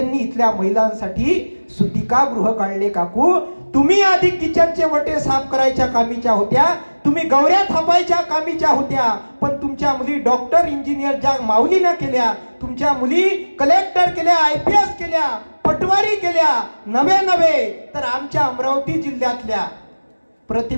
इथल्या महिलांसाठी सुतिकागृह काढले. काकू तुम्ही आधी किचनचे वटे साफ करायच्या कामीच्या होत्या, तुम्ही गौऱ्या थापायच्या कामीच्या होत्या, पण तुमच्या मुली डॉक्टर, इंजिनियर ज्या माऊलीनं केल्या, तुमच्या मुली कलेक्टर केल्या, IPS केल्या, पटवारी केल्या, नवे तर आमच्या अमरावती जिल्ह्यातल्या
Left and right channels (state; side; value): inverted; both; correlation -1.00